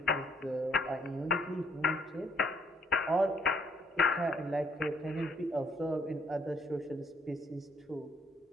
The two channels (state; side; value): normal; both; correlation 0.67